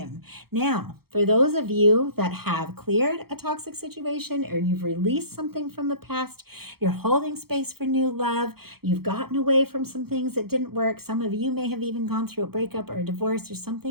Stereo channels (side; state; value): left; late; 0.95 ms